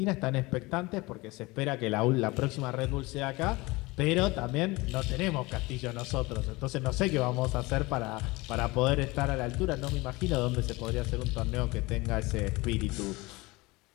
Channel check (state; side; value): quieter; right; 22.6 dB